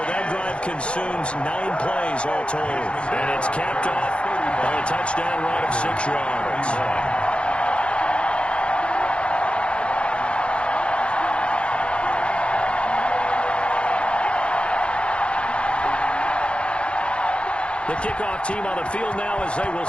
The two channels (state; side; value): late; right; 0.058 ms